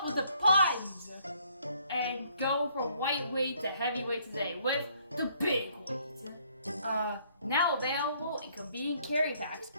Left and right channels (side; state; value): both; inverted; correlation -0.65